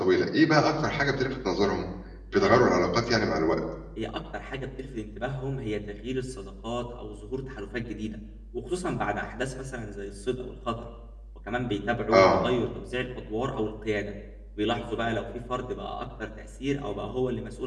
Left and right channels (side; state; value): both; identical; correlation 1.00